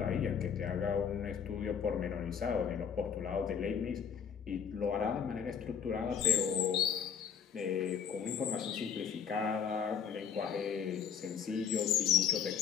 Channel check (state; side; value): quieter; right; 7.5 dB